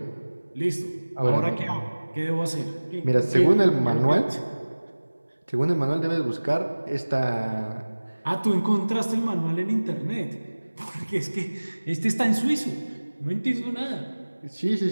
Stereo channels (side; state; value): both; inverted; correlation -1.00